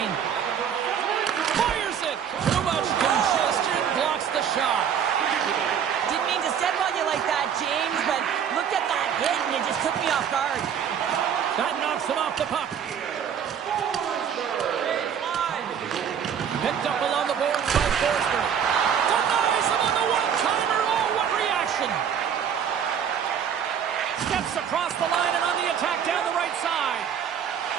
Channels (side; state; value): left; quieter; 8.2 dB